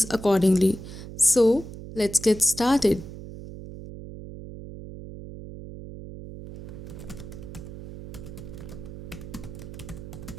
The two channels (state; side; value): noise; right; hum, 12 dB below the sound